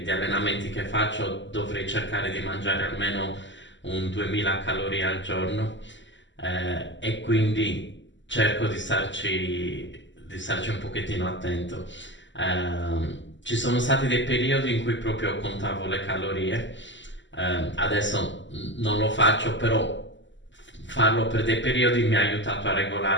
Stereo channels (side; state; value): right; late; 0.54 ms